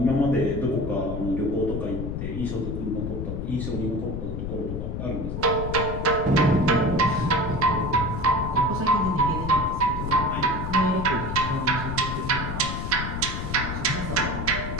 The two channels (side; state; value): left; noise; rumble, 4 dB below the sound